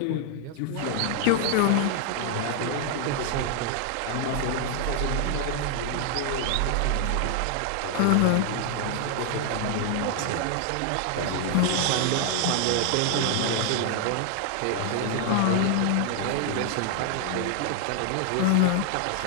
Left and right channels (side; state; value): both; different; correlation 0.00